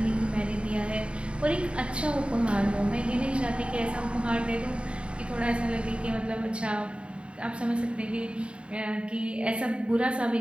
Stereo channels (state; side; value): late; left; 0.057 ms